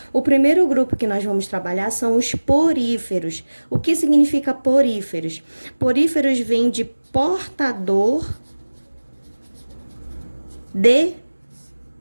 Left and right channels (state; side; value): inverted; both; correlation -1.00